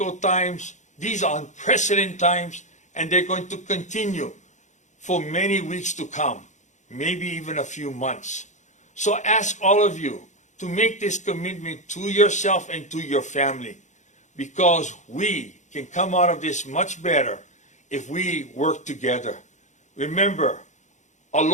times, these are unprecedented times, and they're going to continue for many weeks to come, maybe even a few months. So I ask all of you to make this commitment to yourself and to your family, because we can come out of this much better if we work together. Remember,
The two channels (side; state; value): right; late; 0.35 ms